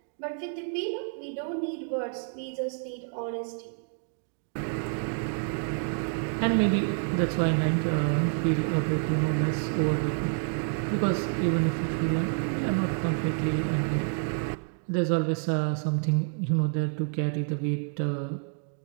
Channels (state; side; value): silent; left; 59 dB below the other